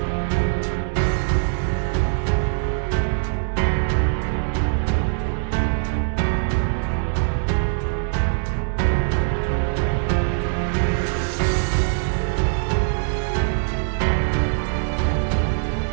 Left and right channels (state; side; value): silent; left; digital silence